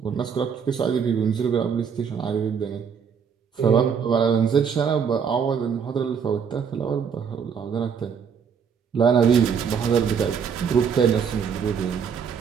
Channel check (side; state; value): left; quieter; 6.8 dB